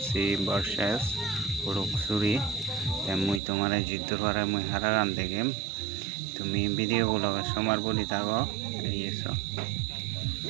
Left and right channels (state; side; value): drops out; left; at 3.4 s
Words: versus Luxury te mui tomare jiddor pare mui haragan degem তুমি ভিডিও গুলোকে সমার বলি থাকো এইসব